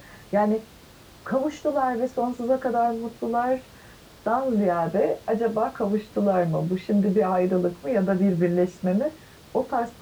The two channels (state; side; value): identical; both; correlation 1.00